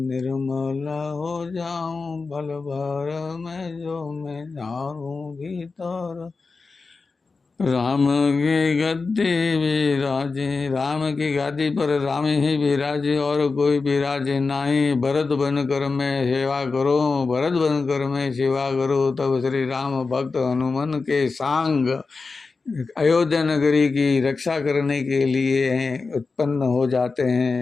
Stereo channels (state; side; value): quieter; right; 4.3 dB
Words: निर्मल हो जाऊं भल भर में जो मैं जाऊं भीतर। राम के गद्दे विराजे, राम की गादी पर राम ही विराजे और कोई विराजे नाही। भरत बन कर मैं सेवा करो, भरत बन कर मैं सेवा करो। तब श्री राम भक्त हनुमान के सांग अयोध्या नगरी की रक्षा करने के लिए उत्पन्न हो जाते